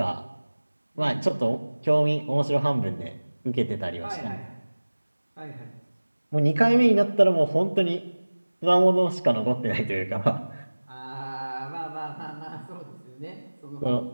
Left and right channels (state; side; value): inverted; both; correlation -1.00